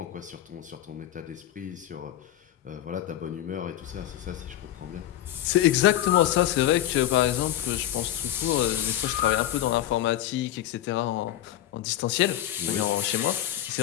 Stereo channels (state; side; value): quieter; right; 12.6 dB